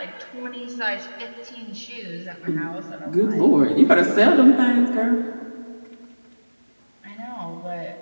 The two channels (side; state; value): both; inverted; correlation -1.00